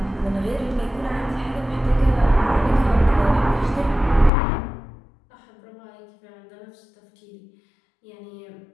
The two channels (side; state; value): right; drops out; at 4.3 s